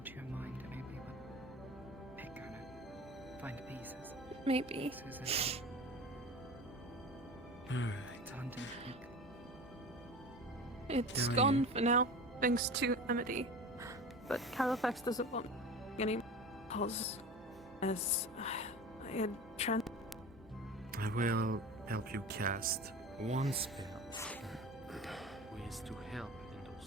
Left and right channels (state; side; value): normal; both; correlation 0.34